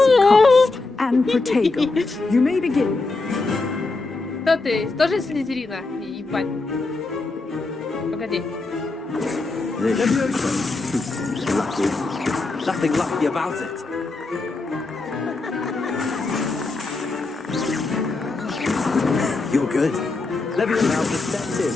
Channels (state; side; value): quieter; right; 3.5 dB